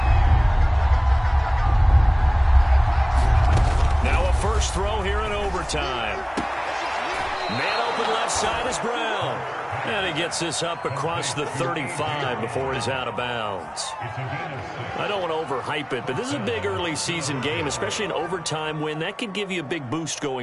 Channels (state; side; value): identical; both; correlation 1.00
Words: Now a first throw here in overtime. Man open left side is Brown. And he gets this up across the 35 before he's out of bounds. I don't want to overhype it, but this is a big early season game, especially an overtime win. That could give you a big boost